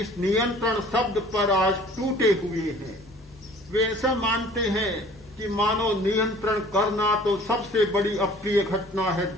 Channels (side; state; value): both; normal; correlation 0.50